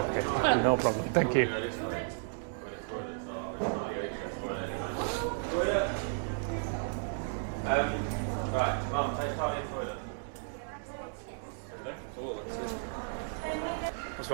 no problem. Thank you.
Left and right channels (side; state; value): left; silent; digital silence